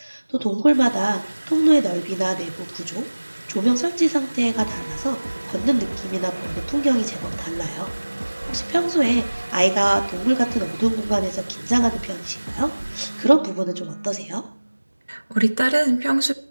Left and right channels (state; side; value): inverted; both; correlation -1.00